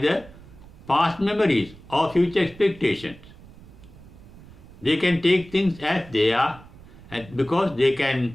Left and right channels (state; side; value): noise; right; rumble, 20 dB below the sound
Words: past memories or future expectations. They can take things as they are, and because they